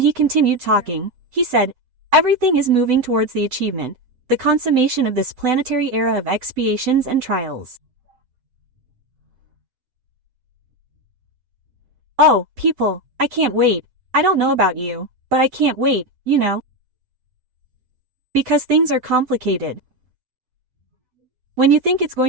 he continued talking. He said, everything is moving towards the achievement, the consummation of this planetary era of expiations and trials. Oh, people, I can't wait. I don't know about you, but I can't wait, you know. Because things are complicated. When you think it's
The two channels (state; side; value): late; left; 7.9 ms